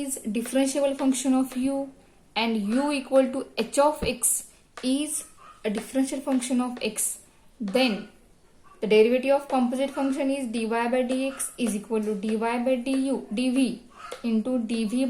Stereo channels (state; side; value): identical; both; correlation 1.00